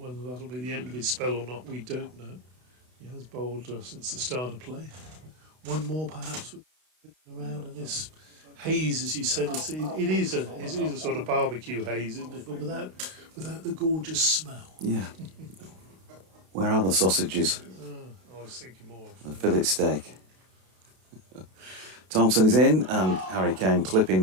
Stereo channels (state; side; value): late; left; 32 ms